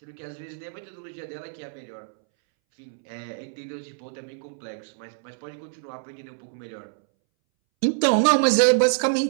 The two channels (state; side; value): silent; left; 61 dB below the other